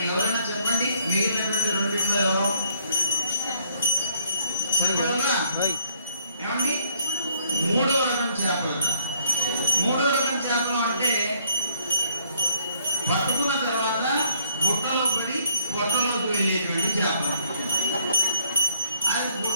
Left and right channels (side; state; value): both; inverted; correlation -0.65